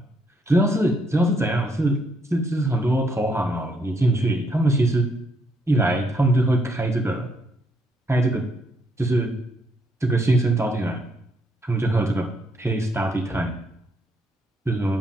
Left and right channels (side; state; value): both; normal; correlation 0.73